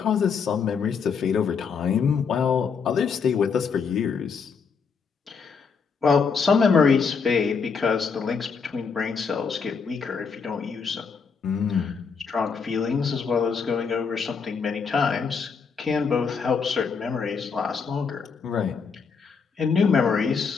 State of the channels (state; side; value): quieter; right; 5.7 dB